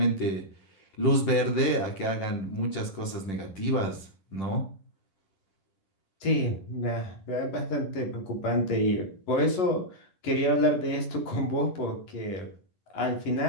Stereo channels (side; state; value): right; late; 10 ms